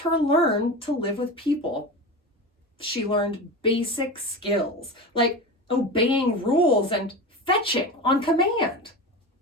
learn to live with people. She learned basic skills like obeying rules and fetching on command.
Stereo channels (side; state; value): both; normal; correlation 0.26